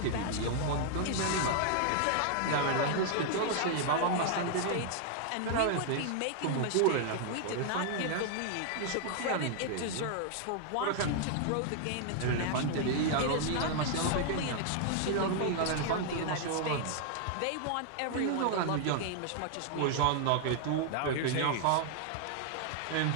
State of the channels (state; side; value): different; both; correlation 0.00